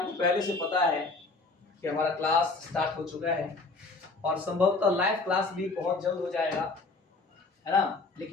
पहले से पता है कि हमारा क्लास स्टार्ट हो चुका है और संभवतः लाइव क्लास भी बहुत जल्द हो जाएगा, है ना।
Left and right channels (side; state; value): right; quieter; 3.6 dB